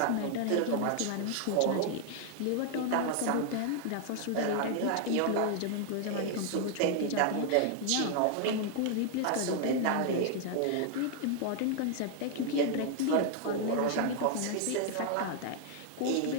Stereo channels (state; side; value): different; both; correlation 0.00